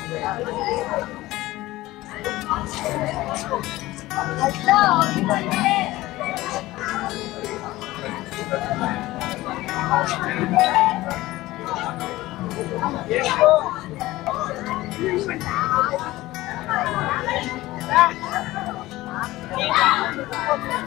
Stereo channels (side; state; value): right; quieter; 17.8 dB